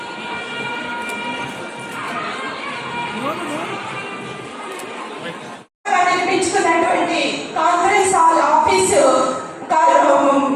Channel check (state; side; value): identical; both; correlation 1.00